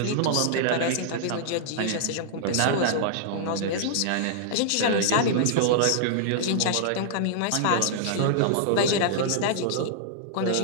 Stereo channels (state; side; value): different; both; correlation -0.01